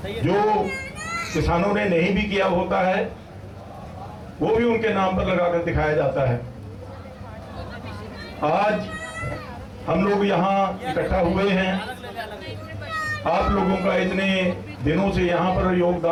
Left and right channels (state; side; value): identical; both; correlation 1.00